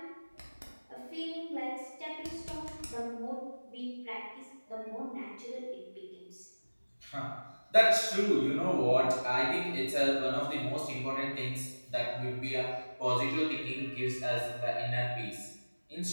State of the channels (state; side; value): inverted; both; correlation -1.00